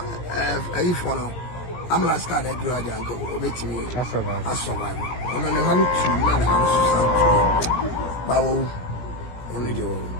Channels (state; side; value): late; right; 17 ms